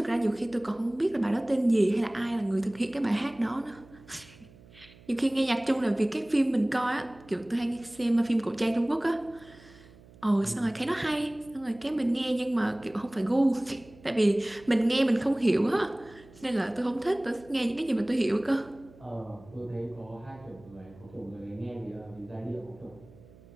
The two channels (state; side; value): noise; right; hum, 23 dB below the sound